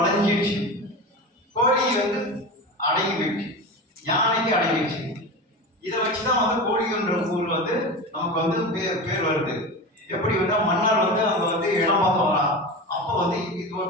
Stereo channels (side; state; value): both; normal; correlation 0.27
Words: கோழி வந்து அடங்கி போயிடுச்சு, யானைக்கு அடங்கிடுச்சு. இதை வச்சுதான் வந்து கோழின்ற ஊர் வந்து நமக்கு வந்து பேர் வருது. எப்படி வந்து மன்னர் வந்து அங்க வந்து இடம் பார்க்க வரா, அப்போ வந்து இது